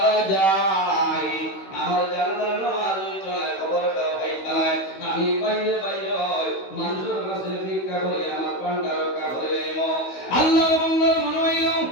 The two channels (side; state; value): right; late; 16 ms